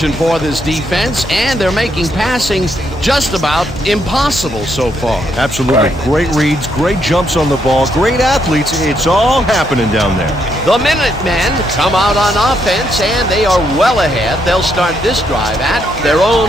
for this defense, and they're making passing just about impossible so far. Absolutely. Great reads, great jumps on the ball, great athletes. It's all happening down there. The Minutemen come out on offense, and they are well ahead. They'll start this drive at their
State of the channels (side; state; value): both; normal; correlation 0.76